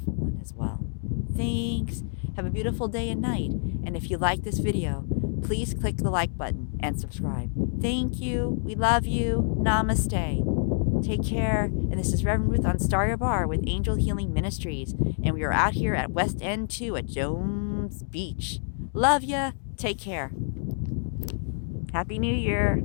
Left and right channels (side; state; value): right; silent; digital silence